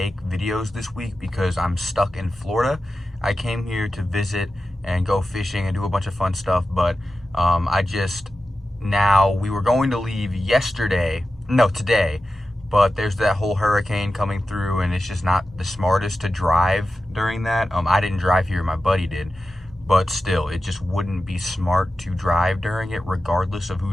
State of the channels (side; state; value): both; normal; correlation 0.93